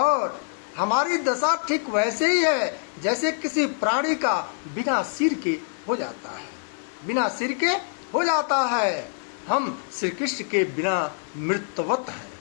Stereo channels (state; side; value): silent; right; digital silence